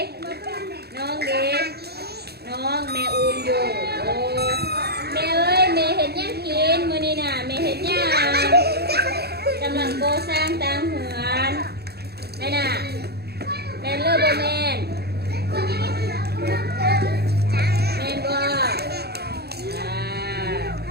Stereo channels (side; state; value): left; late; 0.47 ms